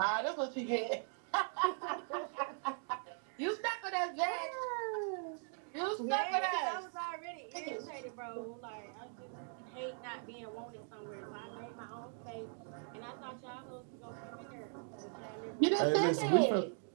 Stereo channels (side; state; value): left; silent; 51 dB below the other